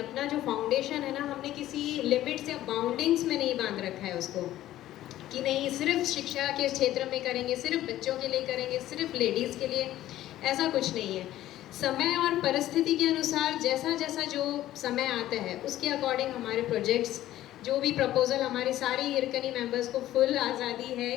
जो फाउंडेशन है ना, हमने किसी लिमिट्स या बाउंडिंग्स में नहीं बांध रखा है उसको, कि नहीं सिर्फ शिक्षा के क्षेत्र में करेंगे, सिर्फ बच्चों के लिए करेंगे, सिर्फ लेडीज़ के लिए, ऐसा कुछ नहीं है। समय और परिस्थिति के अनुसार जैसा जैसा जो समय आता है उसके अकॉर्डिंग हमारे प्रोजेक्ट्स, जो भी प्रपोज़ल, हमारे सारे हिरकनी मेंबर्स को फुल आज़ादी है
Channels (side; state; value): right; quieter; 13.9 dB